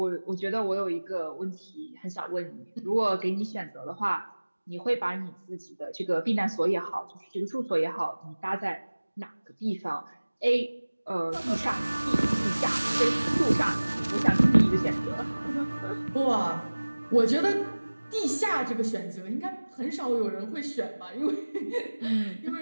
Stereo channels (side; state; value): both; inverted; correlation -1.00